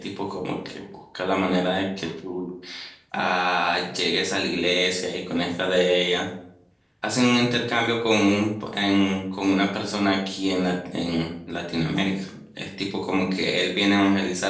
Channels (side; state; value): both; identical; correlation 1.00